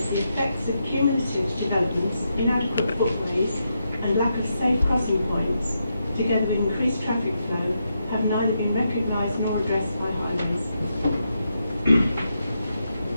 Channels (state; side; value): inverted; both; correlation -0.83